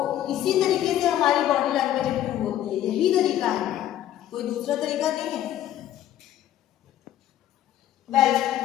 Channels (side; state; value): right; quieter; 12.1 dB